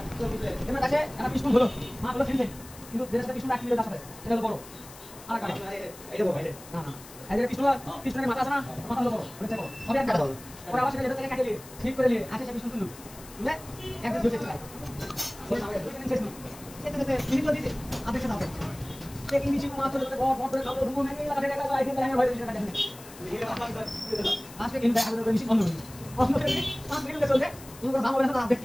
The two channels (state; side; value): noise; left; hiss, 18 dB below the sound